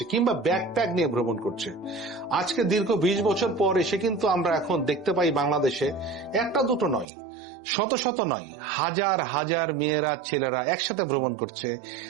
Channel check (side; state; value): left; drops out; at 7.1 s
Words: কিংবা ব্যাকপ্যাক নিয়ে ভ্রমণ করছে। আজকে দীর্ঘ 20 বছর পর এসে কিন্তু আমরা এখন দেখতে পাই বাংলাদেশে একটা দুটো নয়, শত শত নয়, হাজার হাজার মেয়েরা ছেলেরা একসাথে ভ্রমণ করছে,